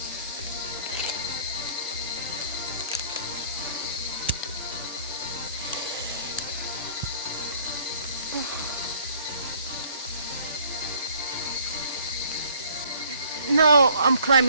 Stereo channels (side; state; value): both; inverted; correlation -0.57